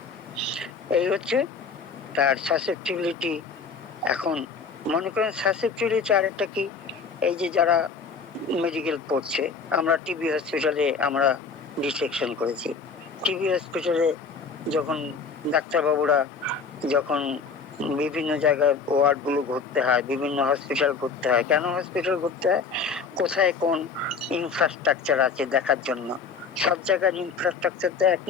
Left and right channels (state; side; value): quieter; right; 5.2 dB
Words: এই হচ্ছে তার সাসেপ্টিবিলিটি। এখন মনে করেন সাসেপ্টিবিলিটি আরেকটা কি, এই যে যারা মেডিকেল পড়ছে, আমরা টিবি হসপিটালে আমরা ডিসেকশন করেছি। টিবি হসপিটালে যখন ডাক্তারবাবুরা যখন বিভিন্ন জায়গায় ওয়ার্ড গুলো ঘুরতে হয়, বিভিন্ন হসপিটাল ঘুরতে হয়, কেন হসপিটাল ঘুরতে হয়? কোথায় কোন ইনফ্রাস্ট্রাকচার আছে দেখার জন্য। সব জায়গার ইনফ্রাস্ট্রাকচার তো এক